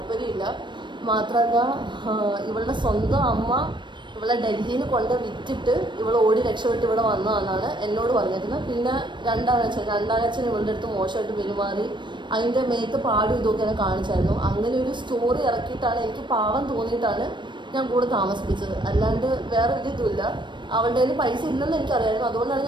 മാത്രമല്ല ഇവളുടെ സ്വന്തം അമ്മ ഇവളെ ഡൽഹിയിൽ കൊണ്ട് വിറ്റിട്ട് ഇവൾ ഓടി രക്ഷപ്പെട്ട് ഇവിടെ വന്നതെന്നാണ് എന്നോട് പറഞ്ഞിരുന്നത്. പിന്നെ രണ്ടാനച്ഛൻ ഇവളുടെ അടുത്ത് മോശമായിട്ട് പെരുമാറി, അതിൻ്റെ മേത്ത് പാടും ഇതൊക്കെ എന്നെ കാണിച്ചായിരുന്നു. അങ്ങനെ ഒരു സ്റ്റോറി ഇറക്കിയിട്ടാണ് എനിക്ക് പാവം തോന്നിയിട്ടാണ് ഞാൻ കൂടെ താമസിപ്പിച്ചത്. അല്ലാണ്ട് വേറെ ഒരു ഇതുമില്ല. അവളുടെ കയ്യിൽ പൈസ ഇല്ലെന്ന് എനിക്കറിയായിരുന്നു. അതുകൊണ്ടാണ്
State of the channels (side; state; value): left; late; 0.22 ms